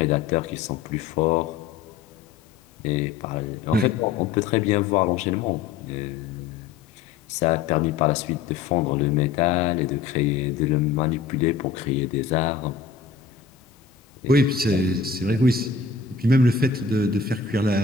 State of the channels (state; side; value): quieter; right; 5.6 dB